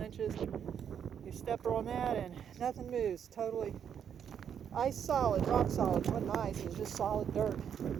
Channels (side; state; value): left; quieter; 8.3 dB